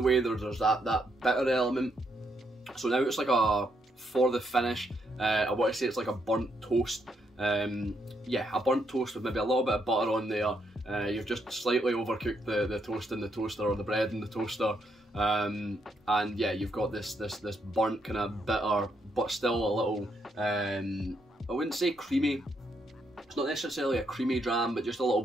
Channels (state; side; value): normal; both; correlation 0.77